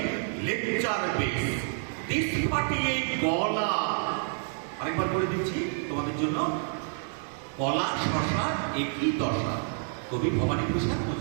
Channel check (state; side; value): silent; left; 59 dB below the other